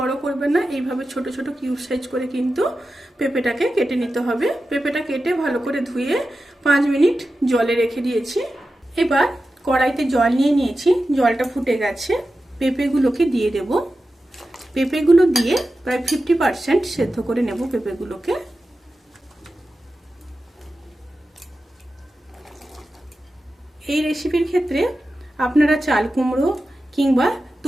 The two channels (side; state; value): both; normal; correlation 0.92